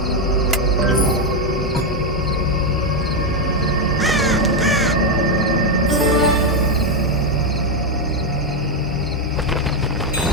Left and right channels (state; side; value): normal; both; correlation 0.04